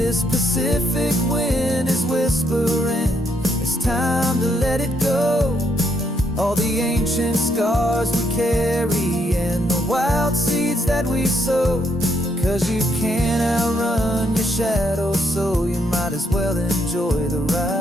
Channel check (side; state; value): both; normal; correlation 0.74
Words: Pacific wind is whispering, it's time to let it go. All the ancient scars we carry and the wild seeds that we sow. 'Cause you can't outrun your shadow, so you might as well enjoy the